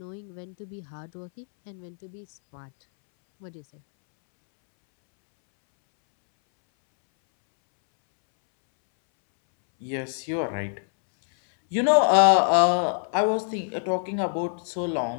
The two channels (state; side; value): silent; right; 62 dB below the other